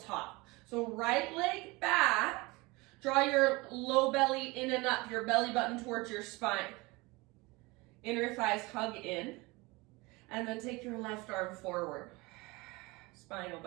So right leg back, draw your low belly in and up, your belly button towards your spine. Inner thighs hug in, and then take your left arm forward. Spinal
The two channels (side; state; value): left; quieter; 23.9 dB